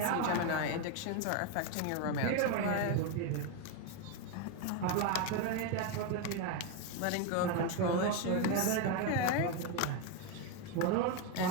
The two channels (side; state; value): both; different; correlation 0.02